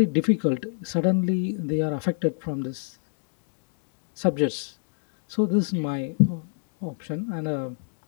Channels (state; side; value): silent; right; digital silence